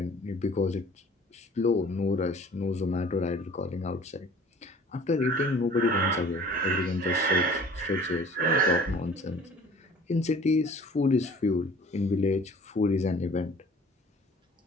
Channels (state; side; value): normal; both; correlation 0.49